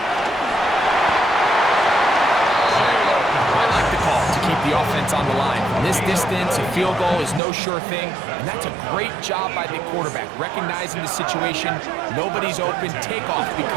I like the call to keep the offense on the line. From this distance, a field goal is no sure thing, and that's a great job by the quarterback, recognizing the situation. Nobody's open, take off,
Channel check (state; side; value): drops out; left; at 7.4 s